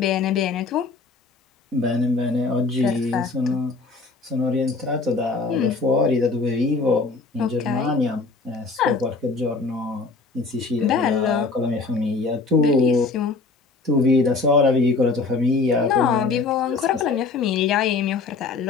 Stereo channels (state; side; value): quieter; right; 4.0 dB